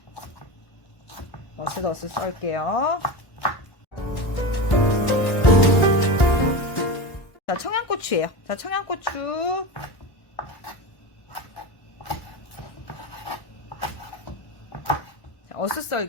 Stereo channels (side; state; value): right; late; 1.1 ms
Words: 어슷어슷 썰게요. 자, 청양고추예요. 자, 청양고추